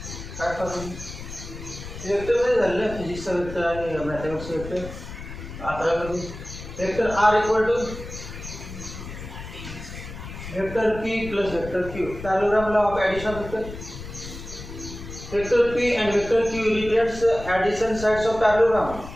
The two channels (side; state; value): left; noise; rumble, 11 dB below the sound